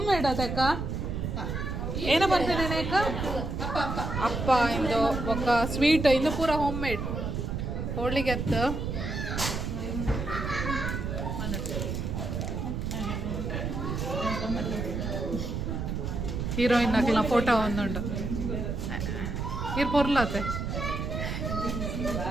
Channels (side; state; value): right; noise; rumble, 3 dB below the sound